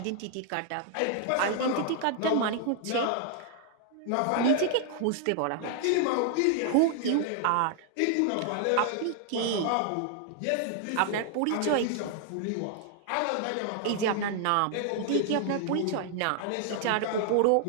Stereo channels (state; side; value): different; both; correlation 0.00